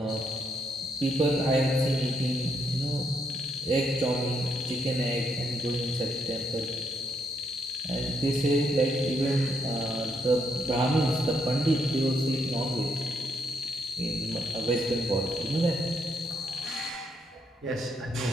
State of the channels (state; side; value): normal; both; correlation 0.75